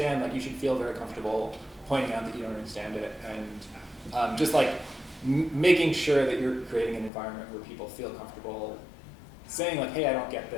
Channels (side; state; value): right; drops out; at 7.1 s